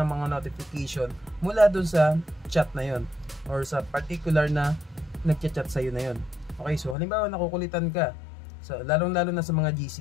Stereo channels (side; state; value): right; drops out; at 7.0 s